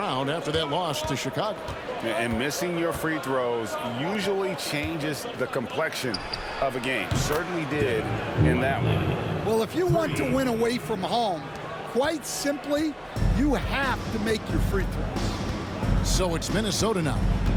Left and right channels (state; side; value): identical; both; correlation 1.00